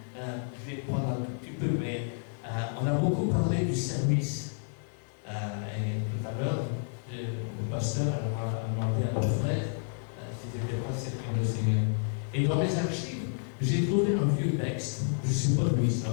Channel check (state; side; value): silent; right; digital silence